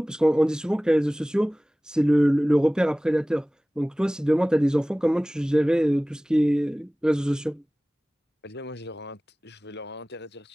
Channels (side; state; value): both; normal; correlation 0.98